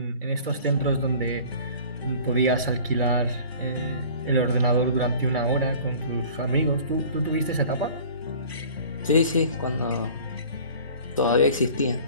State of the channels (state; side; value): inverted; both; correlation -0.46